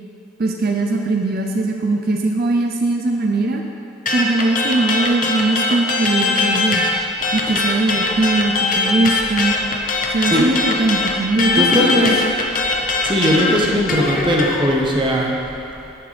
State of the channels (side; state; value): both; normal; correlation 0.50